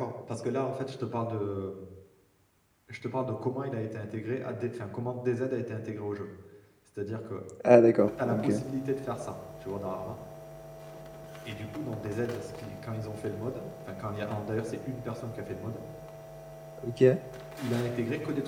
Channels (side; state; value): both; identical; correlation 1.00